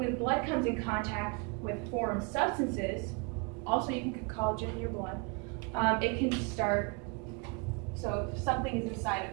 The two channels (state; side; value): quieter; left; 32.5 dB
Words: blood comes in contact with foreign substances, also you can get collagen in your blood, it can start, so if something is inside